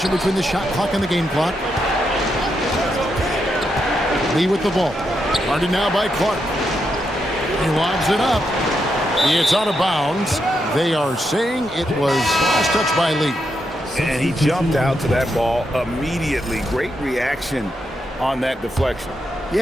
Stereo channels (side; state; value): both; normal; correlation 0.82